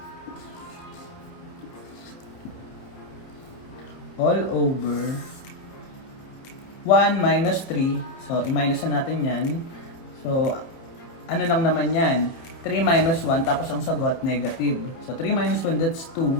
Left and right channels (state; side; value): late; right; 30 ms